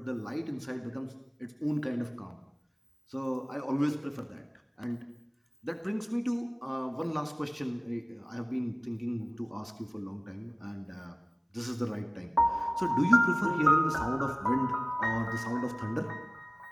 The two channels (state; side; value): identical; both; correlation 1.00